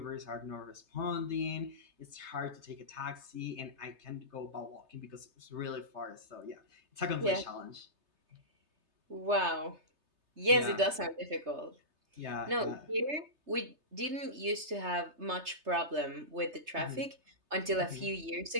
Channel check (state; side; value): late; left; 3.3 ms